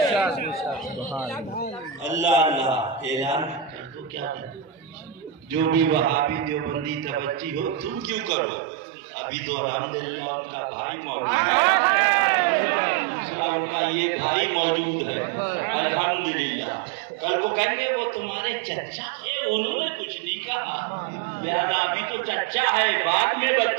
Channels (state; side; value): drops out; left; at 8.3 s